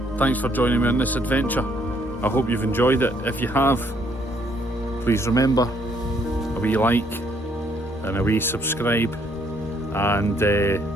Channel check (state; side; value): normal; both; correlation 0.67